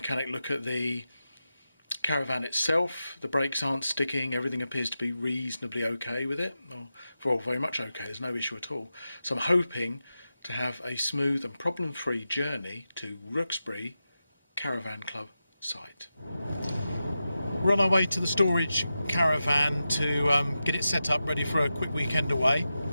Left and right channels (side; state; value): both; inverted; correlation -0.91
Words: look at the caravan itself. The brakes aren't sticking. Everything appears to be reasonably okay with it. Well, very much okay. There's no issue at all. So I'm hoping to have a smooth and problem-free journey to Rookesbury Caravan Club site. We're on our way to the storage caravan to get it set up ready for a quick weekend away.